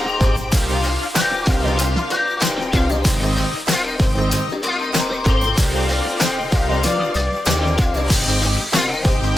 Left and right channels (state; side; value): normal; both; correlation 0.91